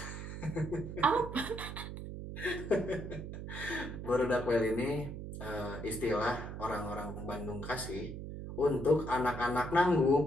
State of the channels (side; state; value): right; noise; hum, 8 dB below the sound